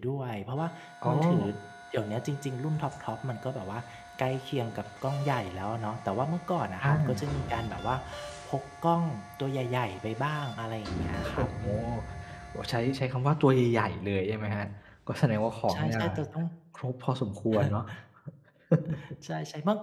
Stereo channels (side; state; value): both; identical; correlation 1.00